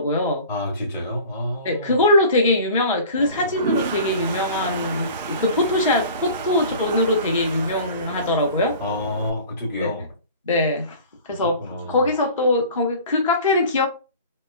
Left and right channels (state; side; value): inverted; both; correlation -0.42